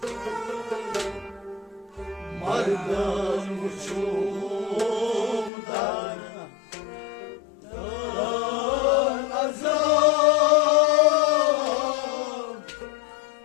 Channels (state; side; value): drops out; right; at 5.5 s